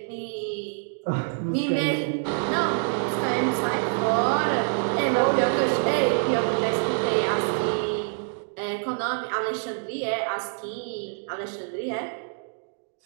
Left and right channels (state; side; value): silent; left; digital silence